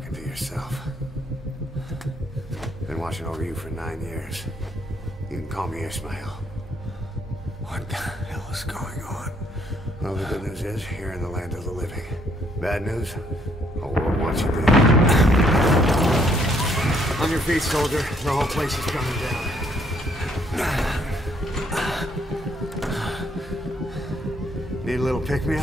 to yourself. Been watching over you for 9 years. You can call me Ishmael. What the hell is going on? Well, the good news is, you're in the land of the living. Bad news? The world wants you dead. On your feet, soldier. The whole place is coming down. Need a little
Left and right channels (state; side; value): normal; both; correlation 0.68